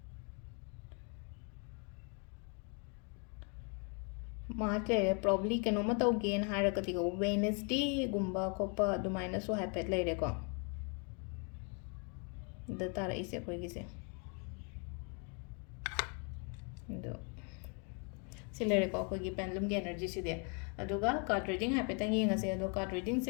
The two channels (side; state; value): right; quieter; 37.5 dB